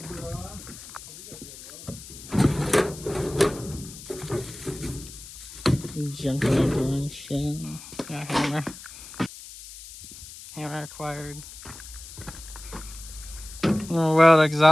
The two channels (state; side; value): noise; left; hiss, 15 dB below the sound